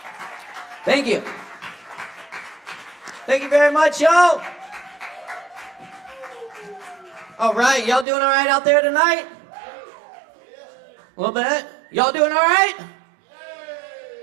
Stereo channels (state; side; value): drops out; left; at 8.1 s